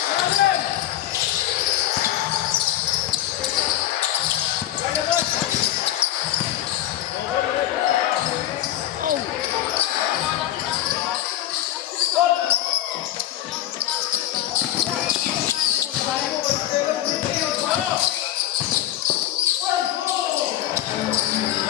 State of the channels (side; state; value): right; quieter; 12.9 dB